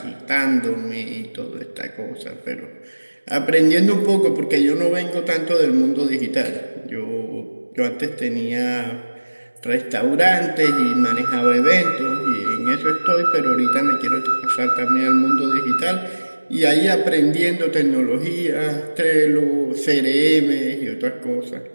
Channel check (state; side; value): inverted; both; correlation -1.00